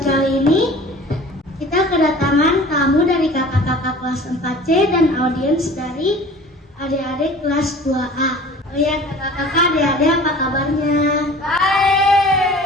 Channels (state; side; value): normal; both; correlation 0.44